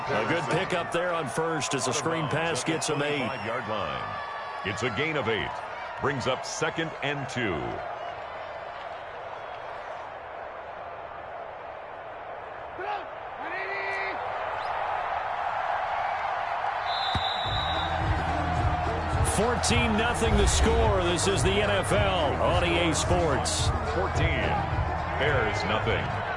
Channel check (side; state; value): both; identical; correlation 1.00